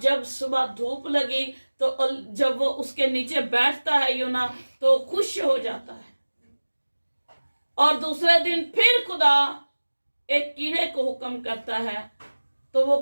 सुबह धूप लगी तो जब वो उसके नीचे बैठता है यूना तो खुश हो जाता है। और दूसरे दिन फिर खुदा एक कीड़े को हुक्म करता है, तो वो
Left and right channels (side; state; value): both; inverted; correlation -1.00